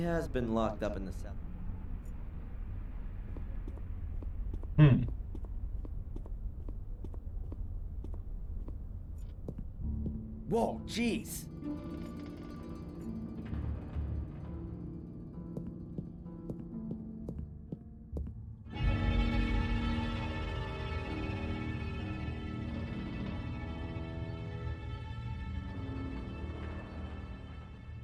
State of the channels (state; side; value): identical; both; correlation 1.00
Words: been locked up in the cell. Whoa, jeez!